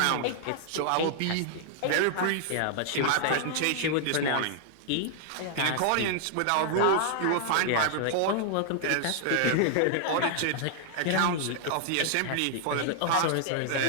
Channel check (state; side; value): different; both; correlation -0.01